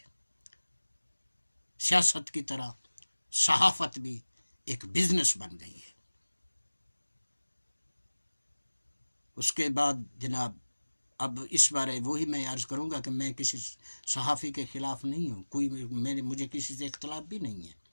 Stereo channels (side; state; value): both; inverted; correlation -1.00